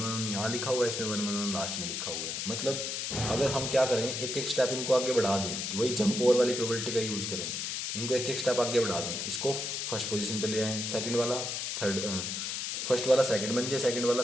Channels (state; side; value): noise; left; hiss, 3 dB below the sound